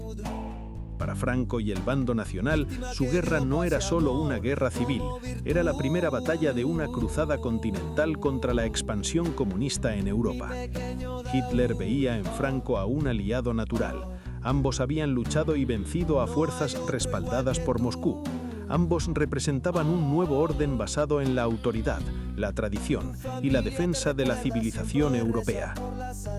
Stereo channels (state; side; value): identical; both; correlation 1.00